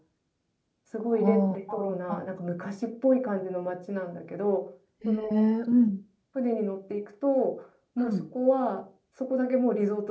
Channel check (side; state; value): both; identical; correlation 1.00